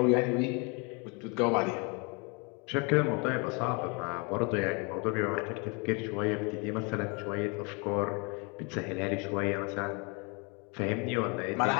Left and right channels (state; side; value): quieter; right; 31.9 dB